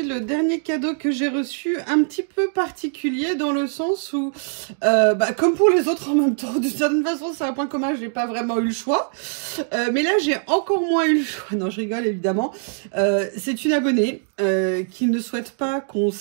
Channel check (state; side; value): silent; left; 64 dB below the other